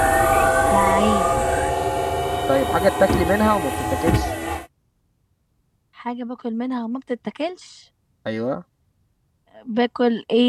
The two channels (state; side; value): identical; both; correlation 1.00